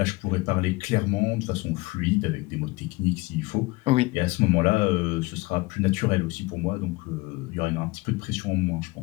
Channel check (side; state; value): right; quieter; 23.4 dB